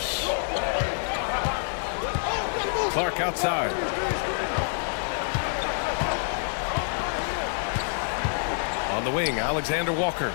Clark outside. On the wing, Alexander Walker.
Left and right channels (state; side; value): silent; right; digital silence